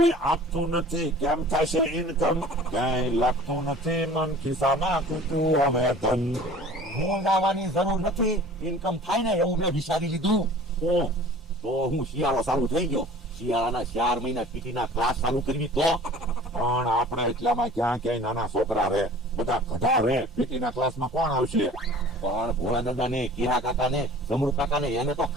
આપતું નથી કેમ થશે ઇન્કમ ક્યાંય લાગતું નથી મન ખિસ્સામાં ખૂટ્યું હવે ધન હું ગાવાની જરૂર નથી, ઇન્કમ થાય ને એવું મેં વિચારી લીધું. તો હું શિયાળો ચાલુ થઈ ગયો, શિયાળાના 4 મહિના પીટીના ક્લાસ ચાલુ કરવી તો. પણ આપણે એટલામાં ક્યાં ક્યાંય નાના છોકરા રહે, બધા ગધા રહે, પીટીના ક્લાસમાં કોણ આવશે? પણ ભોળા દાદા ને, કિરા કાકા ને, જમરૂ કાકા ને એને તો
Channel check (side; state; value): both; normal; correlation 0.45